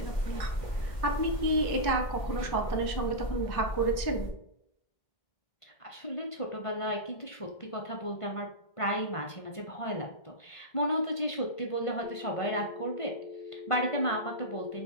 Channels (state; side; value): late; right; 1.6 ms